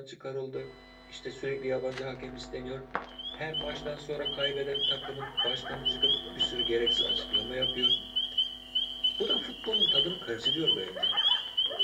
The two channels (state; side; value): identical; both; correlation 1.00